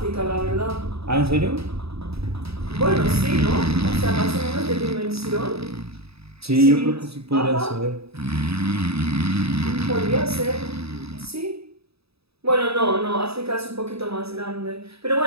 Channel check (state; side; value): late; left; 0.78 ms